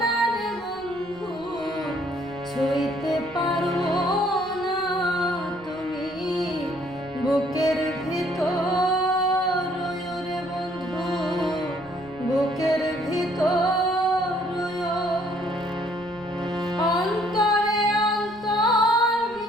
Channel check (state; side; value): noise; right; rumble, 24 dB below the sound